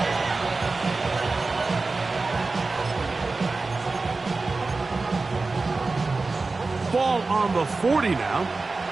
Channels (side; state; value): left; quieter; 3.7 dB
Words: Ball on the 40 now.